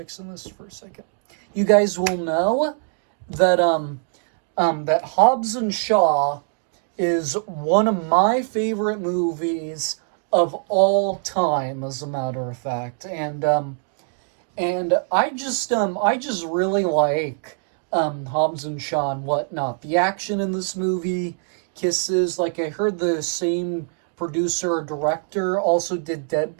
this for a second. You guys will know that that Hobbs and Shaw is one of my favorite movies of all time, as a matter of fact. And I just really like Hobbs and Shaw and whatnot. The action in this movie kisses. Like, I heard the same producer or director also did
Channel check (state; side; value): silent; left; 63 dB below the other